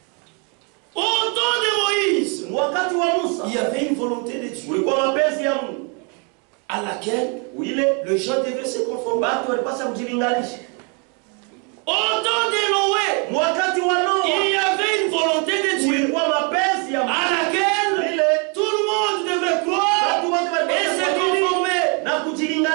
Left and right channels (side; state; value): left; quieter; 35.2 dB